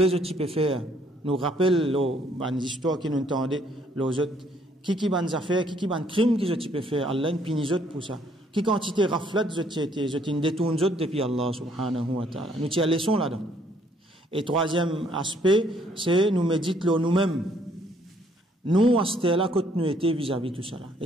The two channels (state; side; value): normal; both; correlation 0.65